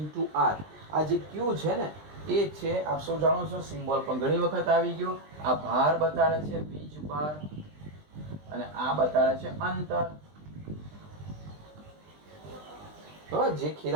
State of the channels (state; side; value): late; left; 20 ms